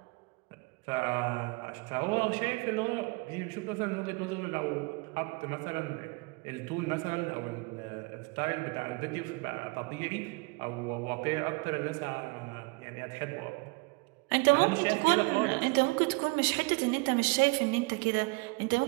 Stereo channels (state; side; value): quieter; left; 27.8 dB